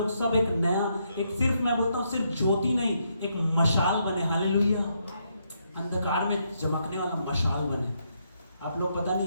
सब एक नया, एक सिर्फ मैं बोलता हूँ सिर्फ ज्योति नहीं, एक मशाल बने। हालेलुया। अंधकार में चमकने वाला मशाल बने। आप लोग पता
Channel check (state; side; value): inverted; both; correlation -0.77